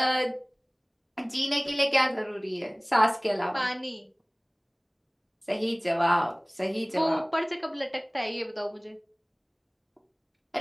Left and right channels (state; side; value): identical; both; correlation 1.00